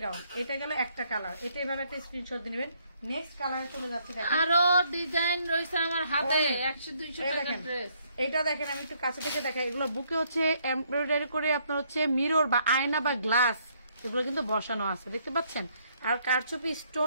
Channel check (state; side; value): inverted; both; correlation -0.69